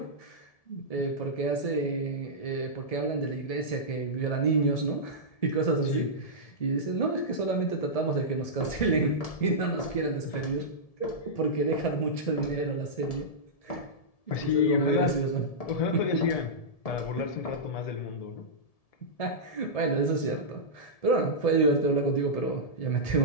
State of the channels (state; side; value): late; right; 1.7 ms